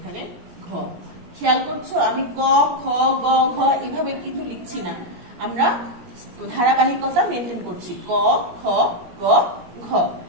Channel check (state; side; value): late; left; 17 ms